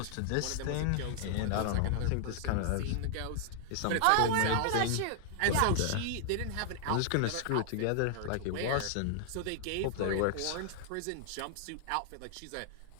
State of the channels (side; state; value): both; different; correlation 0.00